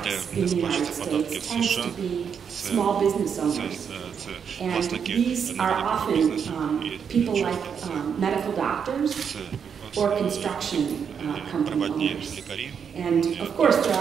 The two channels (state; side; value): quieter; left; 7.1 dB